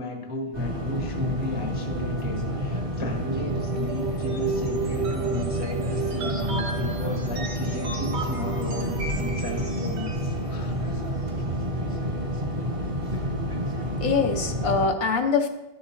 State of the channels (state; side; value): late; left; 1.5 ms